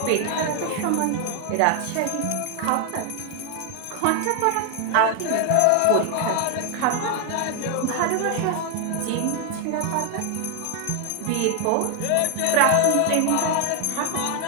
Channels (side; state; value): both; different; correlation 0.00